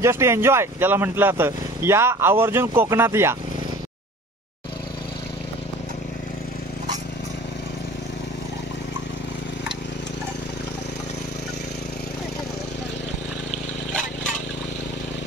जस्ट एन्जॉय ज्याला म्हटलं जातं. या आवर्जून कोकणात या.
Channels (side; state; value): both; normal; correlation 0.44